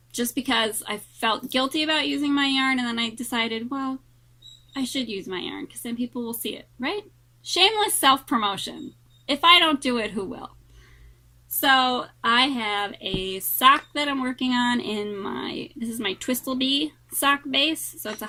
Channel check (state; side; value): identical; both; correlation 1.00